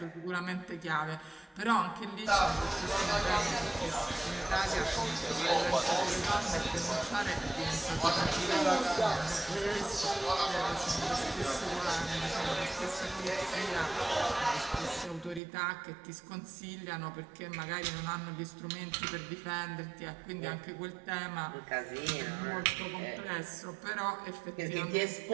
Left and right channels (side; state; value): left; drops out; at 15.4 s